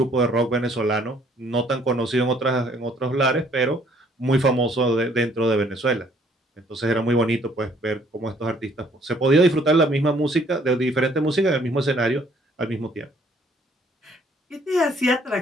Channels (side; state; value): both; normal; correlation 0.62